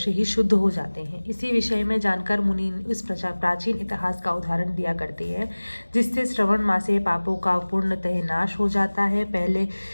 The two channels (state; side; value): inverted; both; correlation -1.00